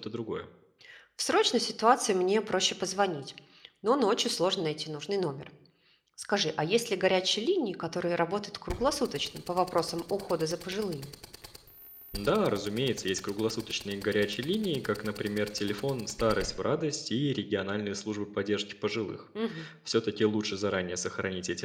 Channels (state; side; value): identical; both; correlation 1.00